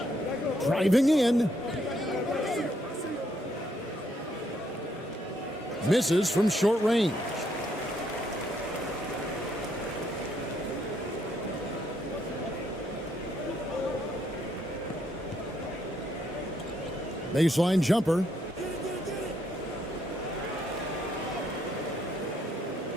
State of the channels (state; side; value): normal; both; correlation 0.73